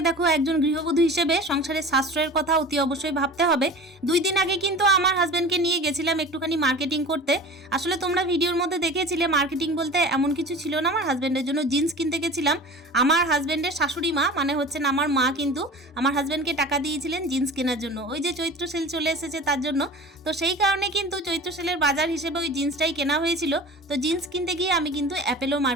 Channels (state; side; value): normal; both; correlation 0.38